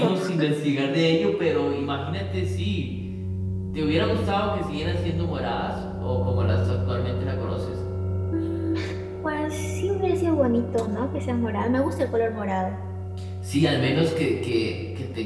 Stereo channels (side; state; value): both; identical; correlation 1.00